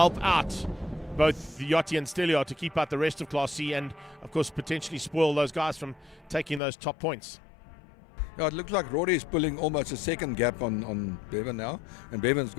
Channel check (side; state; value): right; drops out; at 6.6 s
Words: out both Yachty and Stelio to keep out the rest of Class C and, of course, potentially spoil those guys from taking those top points. Yeah, it looks like Rory is pulling almost a second gap on Bevan now. And Bevan's